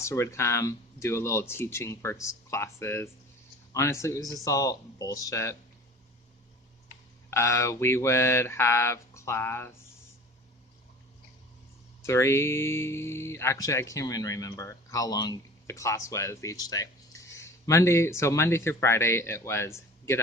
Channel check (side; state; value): both; normal; correlation 0.41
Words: would come, do a little teaching for classes. Honestly, it was just all bullshit. We would have class 3. Actually, I can't even remember how long the class was each day. Monday through Friday, it was get